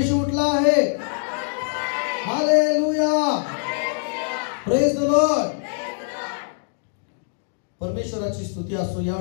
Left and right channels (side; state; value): right; silent; 63 dB below the other